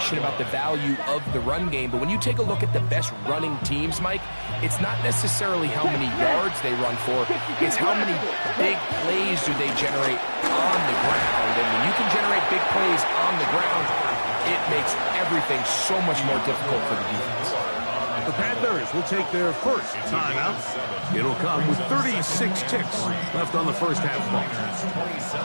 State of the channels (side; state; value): both; inverted; correlation -1.00